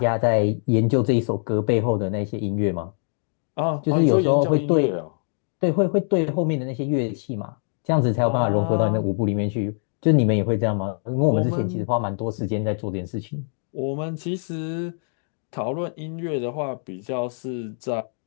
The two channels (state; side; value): silent; right; 63 dB below the other